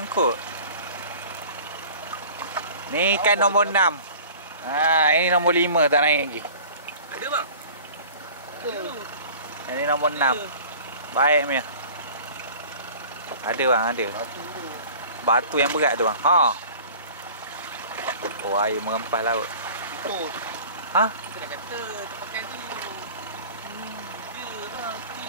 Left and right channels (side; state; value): both; inverted; correlation -0.43